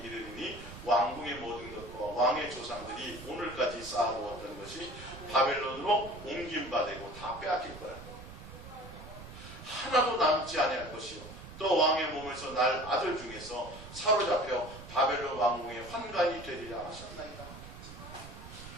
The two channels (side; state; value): right; noise; rumble, 14 dB below the sound